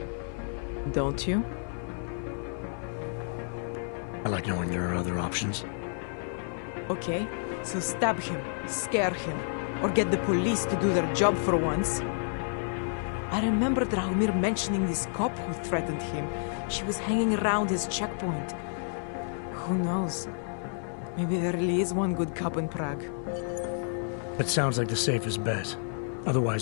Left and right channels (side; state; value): right; silent; 57 dB below the other